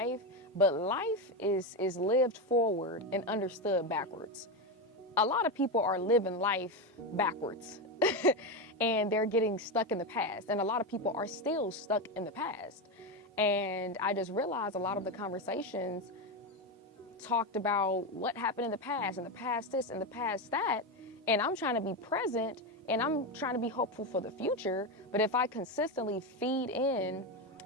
but life is lived forward and understood backwards. A lot of people are living life backwards and they're getting stuck in the past. And a lot of people are still stuck in the past. And I just realized a lot of the conversations talked about what happened in the past, and the past this and the past that. And I'm trying to be present and I'm trying to be hopeful for the future. But if I consistently feed in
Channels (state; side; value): normal; both; correlation 0.13